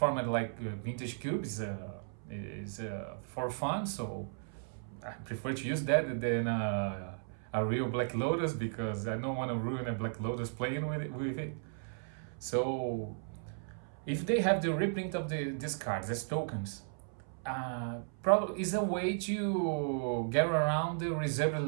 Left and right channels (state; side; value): silent; left; 54 dB below the other